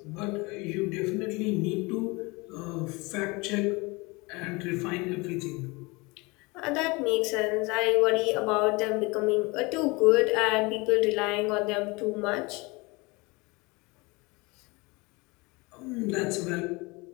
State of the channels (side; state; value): right; quieter; 25.6 dB